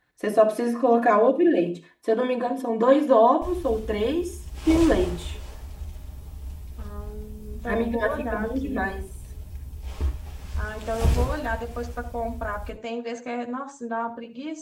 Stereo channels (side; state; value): both; identical; correlation 1.00